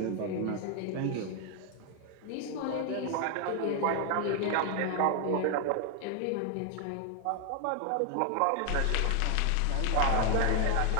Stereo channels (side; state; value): both; different; correlation 0.00